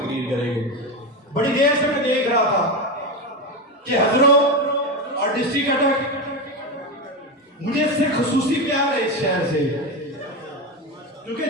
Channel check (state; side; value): normal; both; correlation 0.15